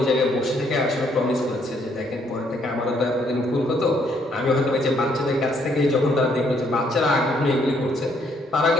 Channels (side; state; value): both; normal; correlation 0.69